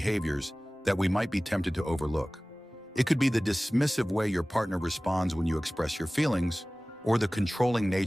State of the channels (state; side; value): normal; both; correlation 0.98